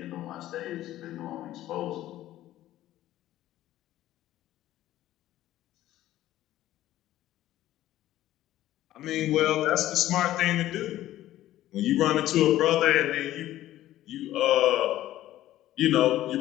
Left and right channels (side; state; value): right; quieter; 14.1 dB